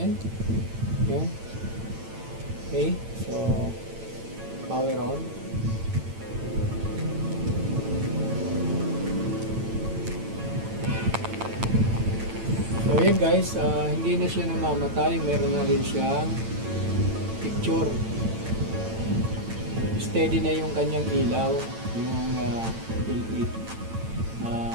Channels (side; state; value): left; late; 9.0 ms